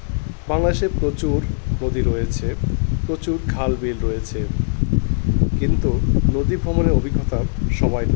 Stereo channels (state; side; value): silent; right; digital silence